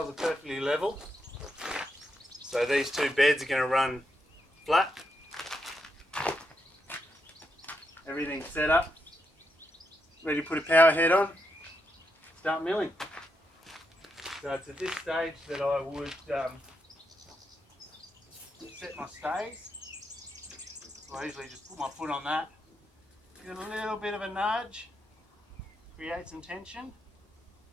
are perfectly level. So these 2 beds are going to run flat. Everything's set up. Ready to put a power head on. Start milling. So it's at this stage that I would set my stays. So I usually just put my foot on that. Give it a little bit of a nudge. Create some tension.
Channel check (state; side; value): normal; both; correlation 0.82